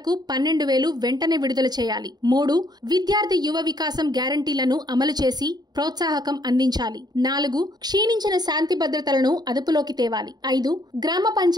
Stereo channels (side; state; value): left; late; 0.20 ms